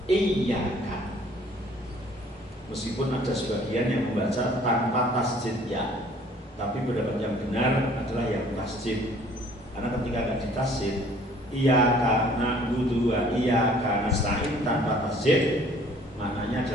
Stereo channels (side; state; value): both; normal; correlation 0.55